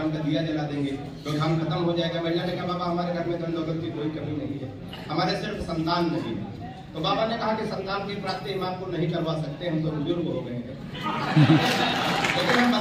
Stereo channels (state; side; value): identical; both; correlation 1.00